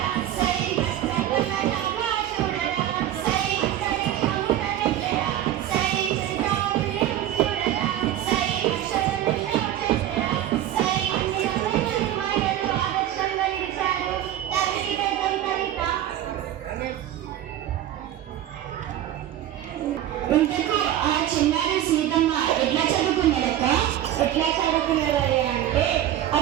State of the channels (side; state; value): left; quieter; 12.1 dB